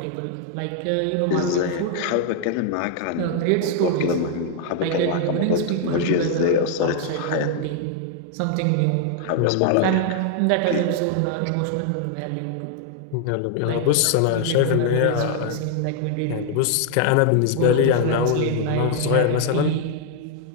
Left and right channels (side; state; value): both; different; correlation 0.00